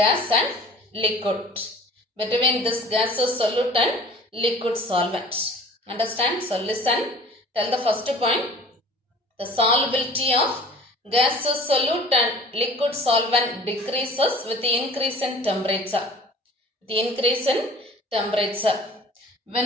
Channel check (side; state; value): both; normal; correlation 0.46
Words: and liquid. Between this gaseous solute and liquid solvent. Understand? So listen. Tell the first point. The solubility of gaseous solute and liquid solvent decreases with the increase in temperature. The increase in temperature.